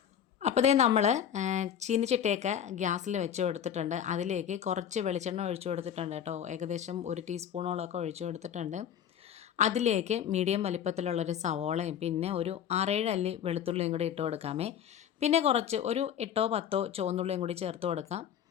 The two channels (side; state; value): right; quieter; 9.1 dB